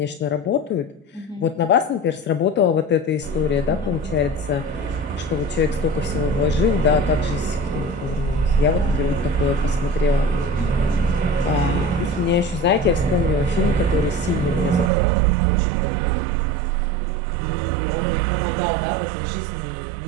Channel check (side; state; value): left; drops out; at 14.9 s